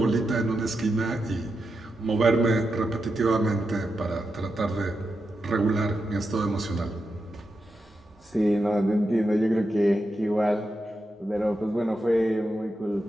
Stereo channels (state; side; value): normal; both; correlation 0.87